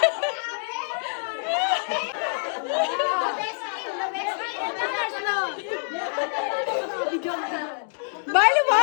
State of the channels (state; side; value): silent; right; digital silence